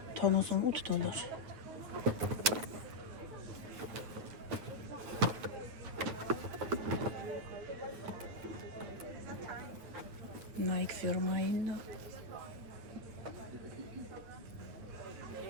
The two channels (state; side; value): late; left; 9.1 ms